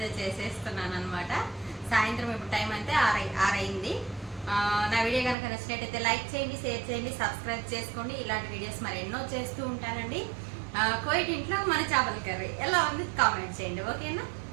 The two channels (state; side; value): drops out; left; at 5.4 s